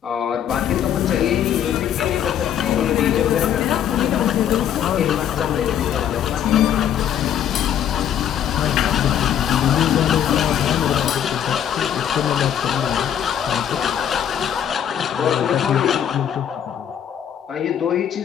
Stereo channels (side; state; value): right; quieter; 9.6 dB